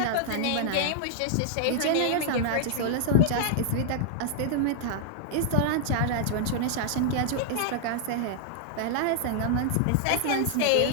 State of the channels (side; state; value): both; different; correlation -0.01